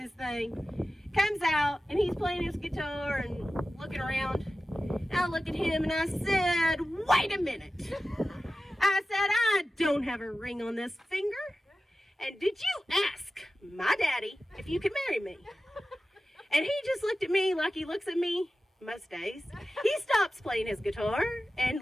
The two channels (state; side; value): normal; both; correlation 0.95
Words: thing. Comes out, and he's playing his guitar and looking around. And I look at him and I said, wait a minute. I said, I don't have a ring on this finger. And did you ask my daddy if you could marry me? And he just looked at me like he looks at me most days. He stops playing his guitar and